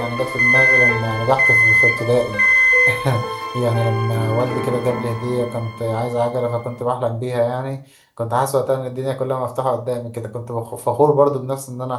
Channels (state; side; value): identical; both; correlation 1.00